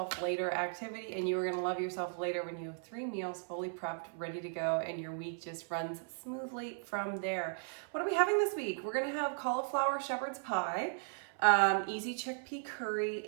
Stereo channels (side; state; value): left; silent; 53 dB below the other